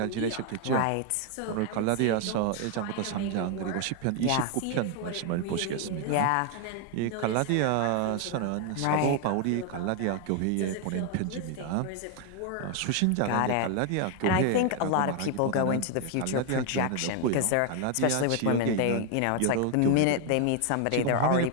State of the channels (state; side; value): different; both; correlation 0.00